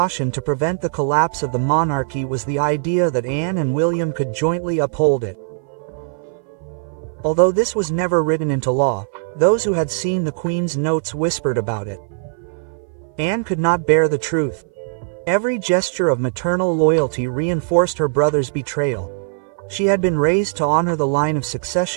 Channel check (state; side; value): silent; left; 58 dB below the other